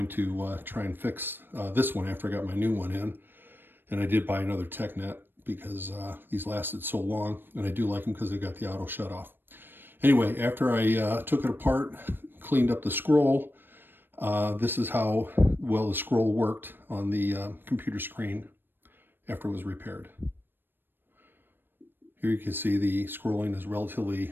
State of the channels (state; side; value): late; left; 0.096 ms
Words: to try and fix this one after I got my new one in. And I did buy another Tecknet because these lasted so long, and I do like them because they got the auto shut off. Anyway, after I took it apart, cleaned up the scroll, this is how well the scroll worked on the computer screen after it was repaired. Here you can see the scrolling is relatively